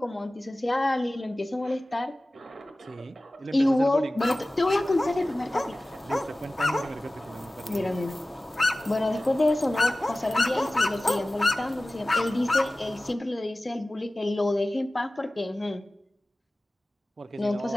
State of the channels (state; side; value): normal; both; correlation 0.97